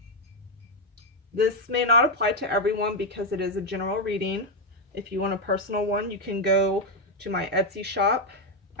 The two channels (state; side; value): normal; both; correlation 0.03